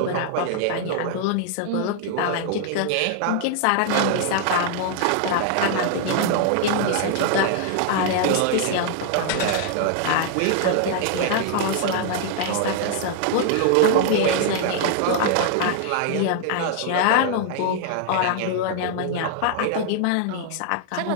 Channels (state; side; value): different; both; correlation 0.00